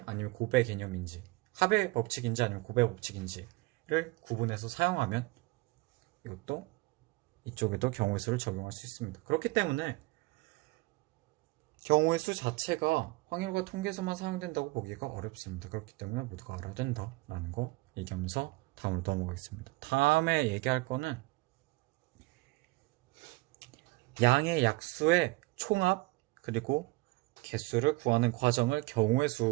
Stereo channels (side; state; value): left; quieter; 22.9 dB